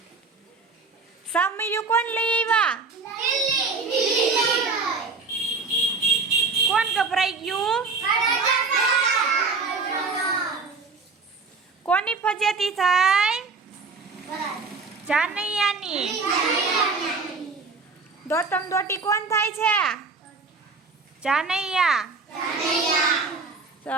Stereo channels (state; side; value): quieter; left; 4.3 dB